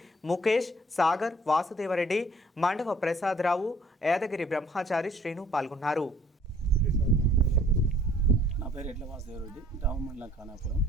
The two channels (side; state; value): both; normal; correlation 0.58